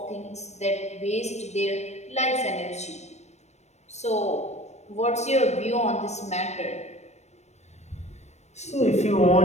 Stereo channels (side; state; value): right; late; 0.32 ms